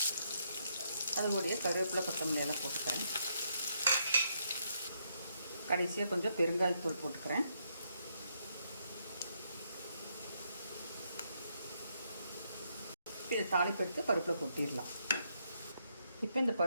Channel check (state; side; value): inverted; both; correlation -0.76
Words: அதுபடியே கருவேப்பிலை கொத்தமல்லி எல்லாம் போட்டுக்கிறேன். கடைசியாக கொஞ்சம் பெருங்காயத்தூள் போட்டுக்கிறேன். இதை தாளிப்பு எடுத்து பருப்பில் கொட்டிடலாம். இப்போ இந்த